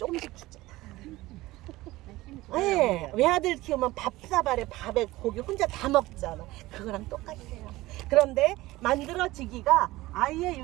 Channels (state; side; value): quieter; left; 18.5 dB